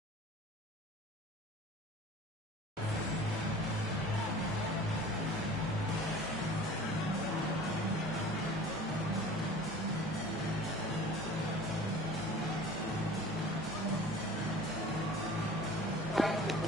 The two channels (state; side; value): normal; both; correlation 0.43